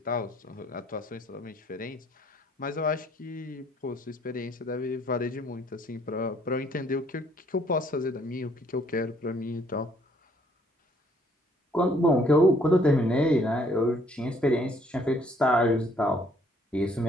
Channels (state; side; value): normal; both; correlation 0.63